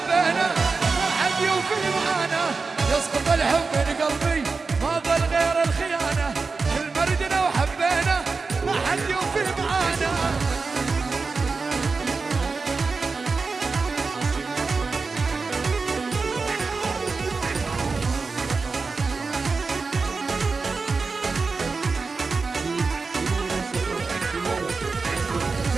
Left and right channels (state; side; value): quieter; left; 4.3 dB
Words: ما حد يوفي معانا. يسقط الحب من قلبي ما ظل غير الخيانة، كل مردنا وحبينا ما حد يوفي معانا.